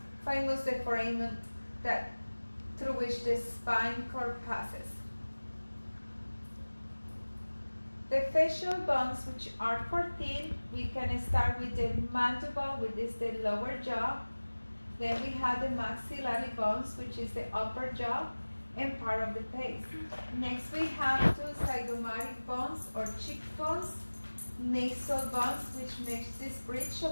famous the foramen through which the spine cord passes. The facial bones, which are 14, we can start with the mandible, which is the lower jaw. Then we have the maxillary bones, which is the upper jaw and part of the face. Next we have 2 zygomatic bones or cheekbones, nasal bones, which makes this bridge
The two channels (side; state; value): both; inverted; correlation -1.00